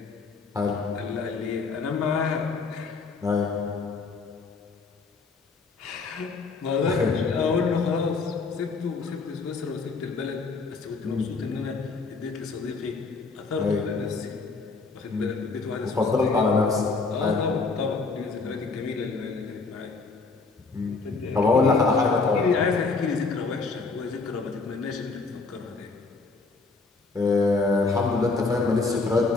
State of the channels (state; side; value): quieter; right; 4.1 dB